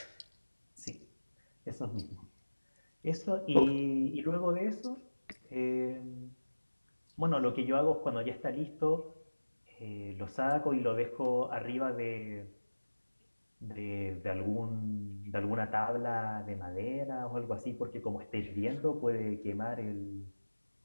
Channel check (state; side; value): inverted; both; correlation -1.00